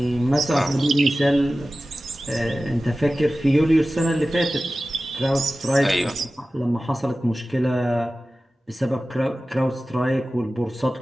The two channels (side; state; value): both; normal; correlation 0.95